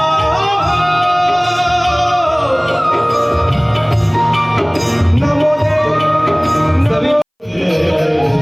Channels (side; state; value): both; identical; correlation 1.00